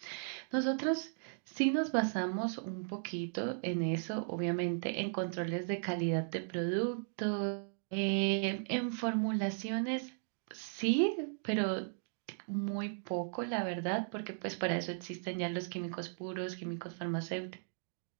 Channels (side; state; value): left; silent; digital silence